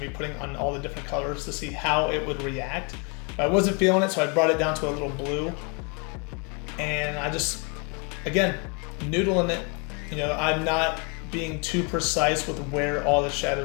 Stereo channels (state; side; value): quieter; right; 33.6 dB